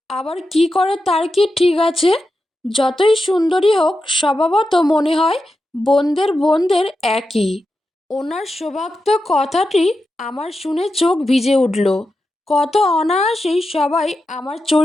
আবার কি করে তার কি ঠিক আছে? যতই সুন্দরী হোক স্বভাবত মনে হয় বোনদের বোনদের একই। ওনার শোভাক্ত কথাটি আমার শুনে চোখ ভিজে উঠল। কত অনায়াসেই সবাই আমার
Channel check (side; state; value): both; normal; correlation 0.90